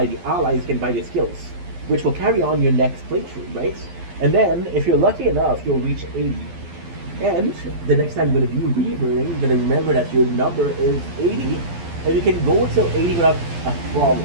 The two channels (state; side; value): late; left; 12 ms